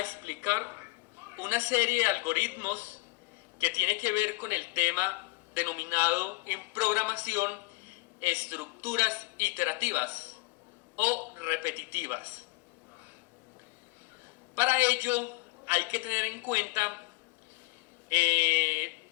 una serie de algoritmos que tiene que ver con el tema denominado en programación estructuras iterativas o repetitivas. Para ello hay que tener en cuenta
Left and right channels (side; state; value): right; quieter; 25.4 dB